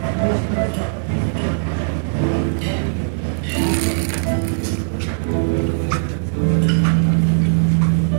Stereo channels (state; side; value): silent; left; digital silence